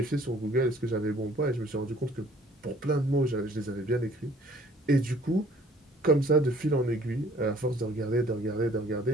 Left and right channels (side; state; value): both; normal; correlation 0.56